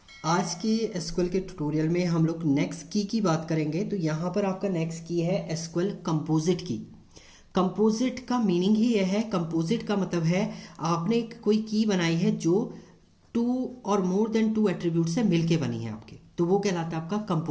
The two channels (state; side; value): identical; both; correlation 1.00